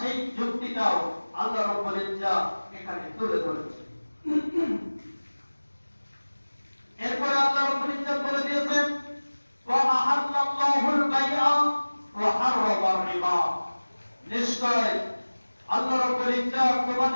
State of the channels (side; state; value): both; inverted; correlation -1.00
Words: যুক্তিটাও আল্লাহ রাব্বুল ইজ্জাত এখানে তুলে ধরেছে। এরপরে আল্লাহ রাব্বুল ইজ্জাত বলে দিয়েছেন ওয়া আহাল্লাল্লাহুল বাইআ ওয়া হারামার রিবা, নিশ্চয় আল্লাহ রাব্বুল ইজ্জাত